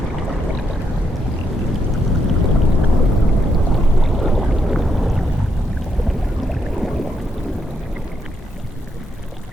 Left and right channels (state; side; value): normal; both; correlation 0.78